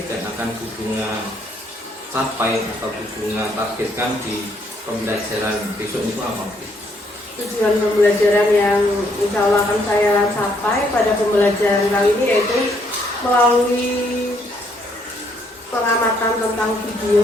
akan Bunga capai atau Bunga targetkan di pembelajaran besok itu apa? Tujuan pembelajaran yang insya Allah akan saya capai pada pembelajaran kali ini yaitu melalui pengamatan tentang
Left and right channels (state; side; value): normal; both; correlation 0.70